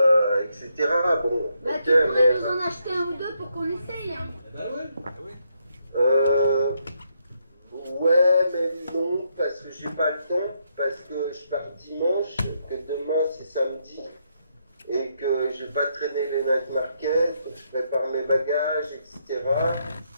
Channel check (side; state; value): both; inverted; correlation -0.77